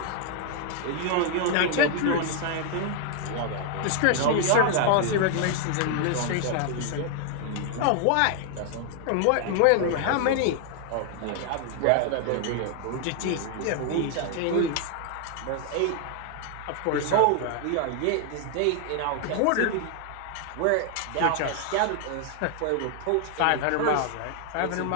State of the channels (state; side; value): different; both; correlation 0.00